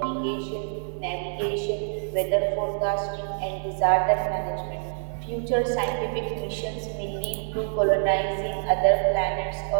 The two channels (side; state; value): left; silent; digital silence